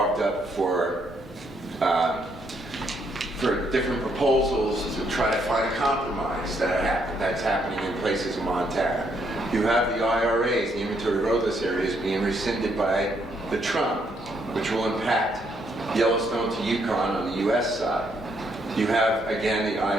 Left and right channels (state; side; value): normal; both; correlation 0.73